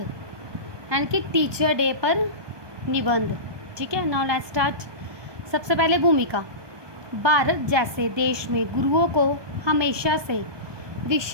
यानी कि टीचर डे पर निबंध। ठीक है, नाउ लेट्स स्टार्ट। सबसे पहले भूमिका। भारत जैसे देश में गुरुओं को हमेशा से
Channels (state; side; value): late; left; 1.2 ms